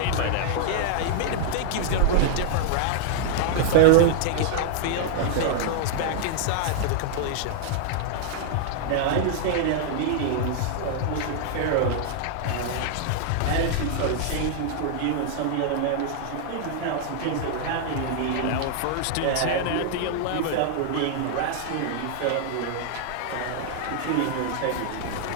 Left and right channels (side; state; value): both; different; correlation -0.01